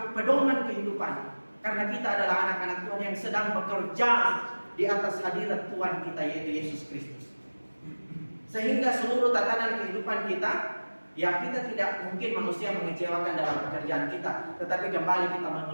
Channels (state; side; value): inverted; both; correlation -1.00